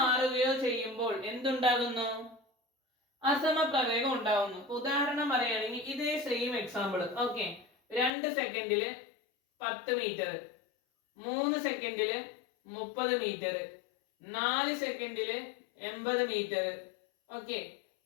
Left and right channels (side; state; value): right; drops out; at 8.1 s